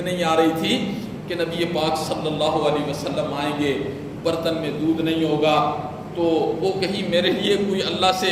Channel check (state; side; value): identical; both; correlation 1.00